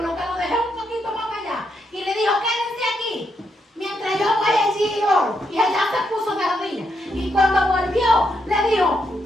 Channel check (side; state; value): both; normal; correlation 0.80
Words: que lo dejé un poquito más allá, y le dijo: quédense aquí mientras yo voy allí y oro? Y allá se puso de rodillas. Y cuando volvió, le dijo: